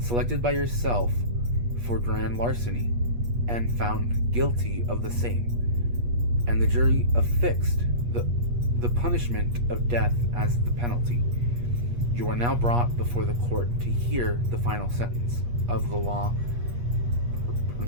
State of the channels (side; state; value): left; late; 8.4 ms